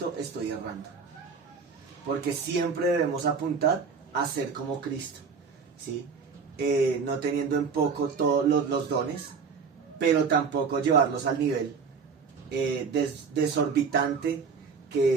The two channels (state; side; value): quieter; left; 5.5 dB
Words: estoy errando. Porque siempre debemos apuntar a ser como Cristo, ¿sí? No teniendo en poco todos los dones, pero tampoco llevarlos al nivel desorbitante